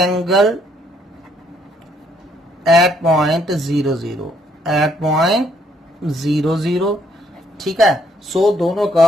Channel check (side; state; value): both; normal; correlation 0.69